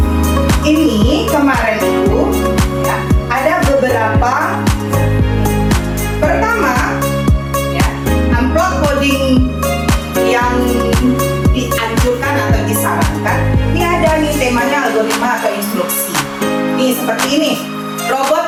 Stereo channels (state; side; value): identical; both; correlation 1.00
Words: Ini kemarin itu ya, ada beberapa seperti ini,